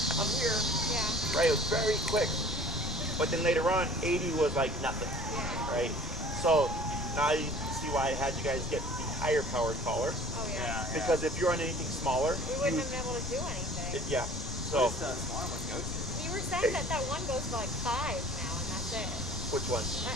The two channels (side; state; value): left; noise; rumble, 9 dB below the sound